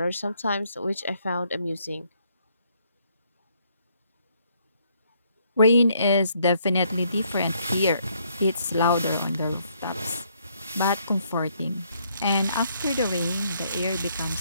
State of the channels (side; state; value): both; inverted; correlation -0.70